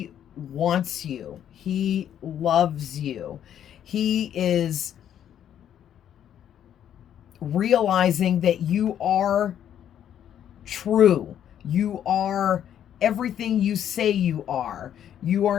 wants you. He loves you. He is realizing that you are true. You are everything you say you are. You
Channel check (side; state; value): right; quieter; 10.0 dB